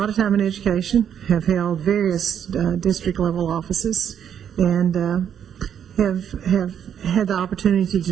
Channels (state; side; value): quieter; left; 8.9 dB